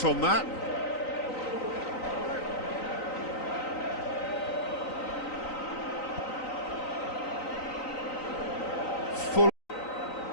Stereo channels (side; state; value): right; late; 3.9 ms